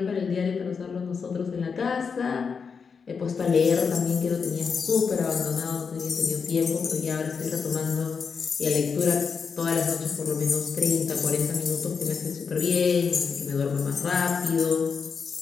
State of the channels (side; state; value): right; quieter; 5.7 dB